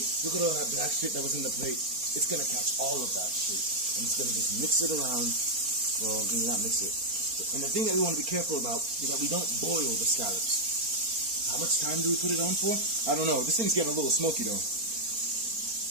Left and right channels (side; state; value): left; late; 4.3 ms